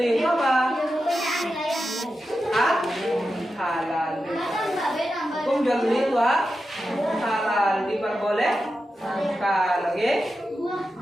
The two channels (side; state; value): both; normal; correlation 0.90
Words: itu apa? Halal. Hukum jual beli itu halal, diperbolehkan. Oke?